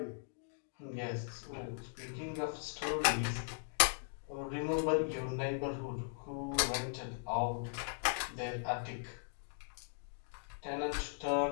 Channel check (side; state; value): right; silent; digital silence